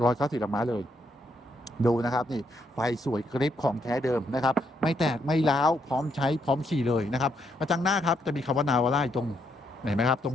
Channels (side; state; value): both; normal; correlation 0.76